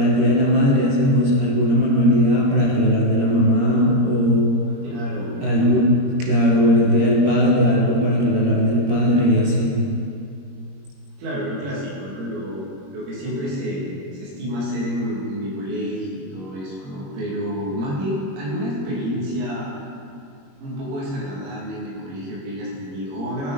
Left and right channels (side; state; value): left; late; 21 ms